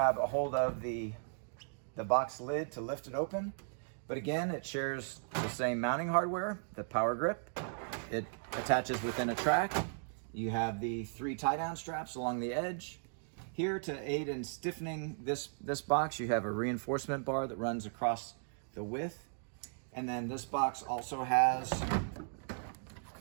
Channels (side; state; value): left; silent; digital silence